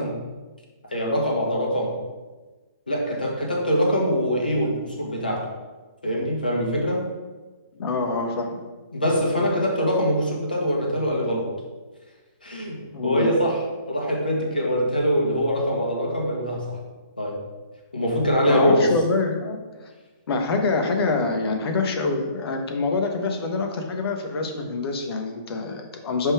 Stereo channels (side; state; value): both; inverted; correlation -0.59